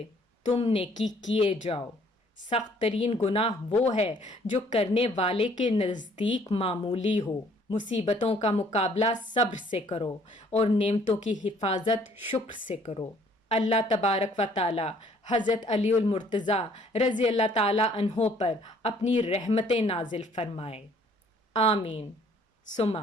تم نیکی کیے جاؤ۔ سخت ترین گناہ وہ ہے جو کرنے والے کے نزدیک معمولی ہو۔ مصیبتوں کا مقابلہ صبر سے کرو اور نعمتوں کی حفاظت شکر سے کرو۔ اللہ تبارک و تعالی حضرت علی المرتضیٰ رضی اللہ تعالی عنہ پر اپنی رحمتیں نازل فرمائے۔ آمین ثم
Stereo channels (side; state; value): both; normal; correlation 0.60